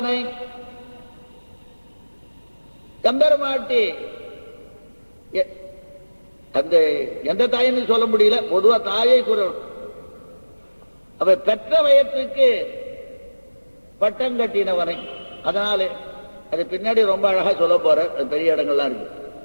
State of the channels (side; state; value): both; inverted; correlation -1.00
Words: கம்பெருமாட்டி அந்த எந்த தாயின்னு சொல்ல முடியல, பொதுவா தாயை குரல். அவ பெற்ற வயத்துக்கு பட்டம் கட்டினவனை. அதனால அது பின்னாடி ரொம்ப அழகா சொல்ல போற, பெரிய இடங்கள்லாம் இருக்கு.